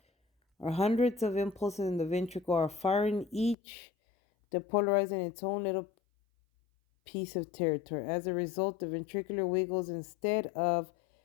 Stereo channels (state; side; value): drops out; right; at 3.6 s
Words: are hundreds of impulses in the ventricle are firing each depolarizing its own little piece of territory. As a result, the ventricular wiggles instead of